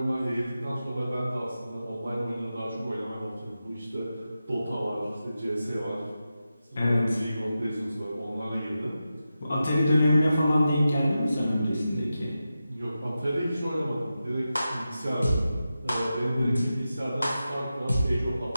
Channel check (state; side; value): inverted; both; correlation -0.91